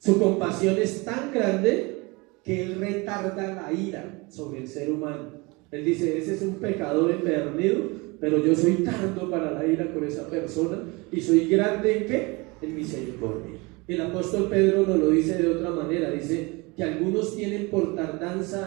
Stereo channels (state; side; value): quieter; left; 26.1 dB